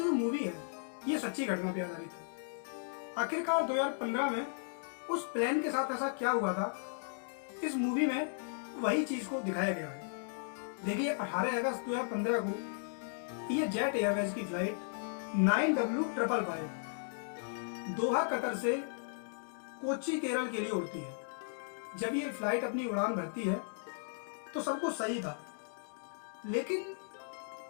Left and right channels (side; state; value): right; silent; digital silence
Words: जो मूवी है ये सच्ची घटना पर आधारित है। आखिरकार 2015 में उस प्लेन के साथ ऐसा क्या हुआ था, इस मूवी में वही चीज को दिखाया गया है। देखिए, 18 अगस्त 2015 को ये जेट एयरवेज की फ्लाइट 9W555 दोहा कतर से कोच्चि केरल के लिए उड़ती है। जब ये फ्लाइट अपनी उड़ान भरती है तो सब कुछ सही था, लेकिन